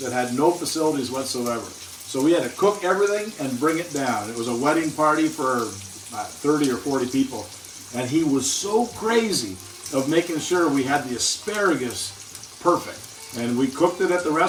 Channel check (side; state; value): both; identical; correlation 1.00